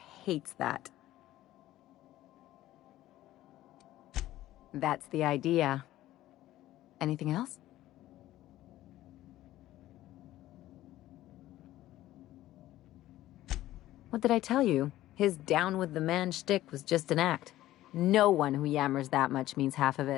hates that. That's the idea. Anything else? What did I tell you? His down with the man shtick was just an act. No one who yammers that much means half of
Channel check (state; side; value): quieter; right; 14.9 dB